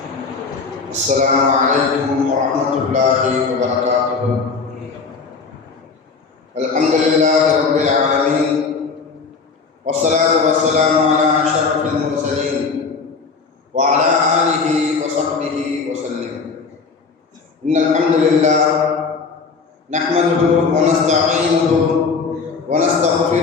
السلام عليكم ورحمة الله وبركاته. الحمد لله رب العالمين، والصلاة والسلام على أشرف المرسلين وعلى آله وصحبه وسلم. إن الحمد لله نحمده ونستعينه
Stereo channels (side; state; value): right; quieter; 4.8 dB